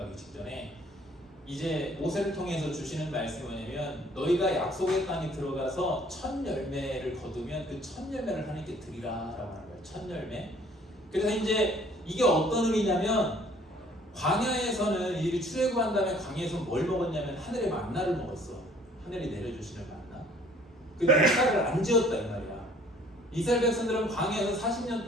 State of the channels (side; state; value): both; normal; correlation 0.56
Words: 직전에 이제 모세를 통해서 주시는 말씀이 뭐냐면 너희가 약속의 땅에 들어가서 첫 열매를 거두면 그 첫 열매를 하나님께 드리라 라고 하는 거예요. 첫 열매. 그래서 이제 이게 어떤 의미냐면 광야에서는 이들이 출애굽한 다음에 광야에서 뭘 먹었냐면 하늘의 만나를 먹었어. 하늘이 내려주시는 만나. 그 농사를 안 지었다 이 말이야. 이스라엘 백성들은 광야에서 40년